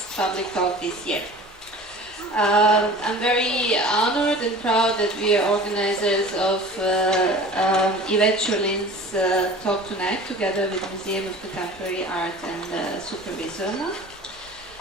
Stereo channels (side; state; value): both; normal; correlation 0.41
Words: public talk this year. I'm very honored and proud that we are organizers of Ivet Ćurlin's talk tonight, together with Museum of Contemporary Art and Supervisorna.